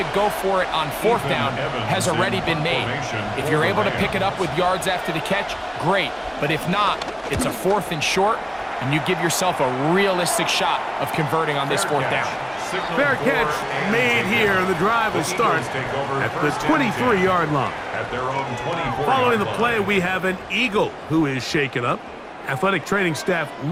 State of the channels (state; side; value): identical; both; correlation 1.00